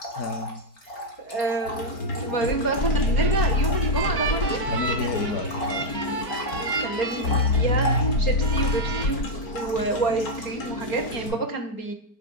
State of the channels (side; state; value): right; late; 4.5 ms